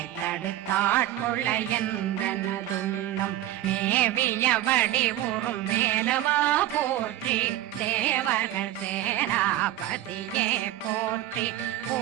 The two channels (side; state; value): left; quieter; 13.6 dB